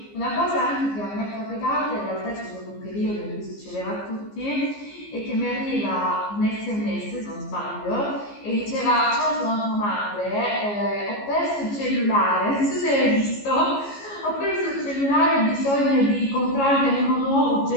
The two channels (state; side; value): late; right; 14 ms